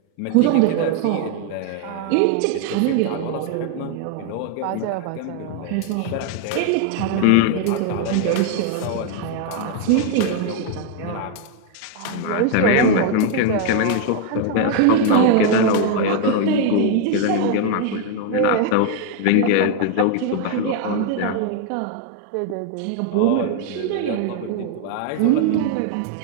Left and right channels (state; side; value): different; both; correlation 0.00